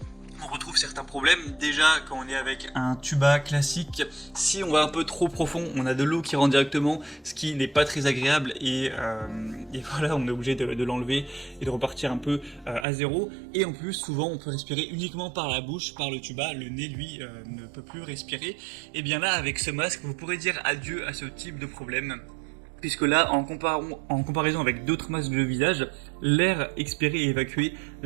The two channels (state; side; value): drops out; left; at 12.9 s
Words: On retrouve certains problèmes. Déjà, quand on est avec un tuba classique, si on va un peu trop profond, on a de l'eau qui rentre directement, ce qui n'est pas très agréable, et voilà, on est obligé de l'enlever et de repartir un peu à zéro. Et en plus, souvent, on peut respirer uniquement par la bouche, par le tuba. Le nez, lui, ne peut plus respirer. Et bien là, avec ce masque, vous pourrez dire adieu à ce type de problème. Puisque là, en comparaison avec d'autres masques de visage, l'air expiré est évacué